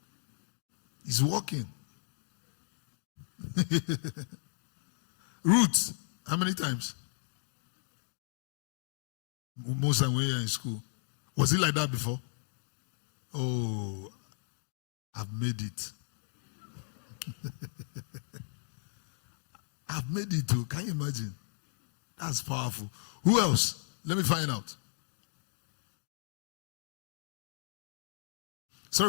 It's working. Roots, how many times? Most time when you're in school. Was it like that before? Oh, I've made it. I've made it too. Can you imagine? That's powerful. Who else? Let me find out.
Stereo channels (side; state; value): right; silent; digital silence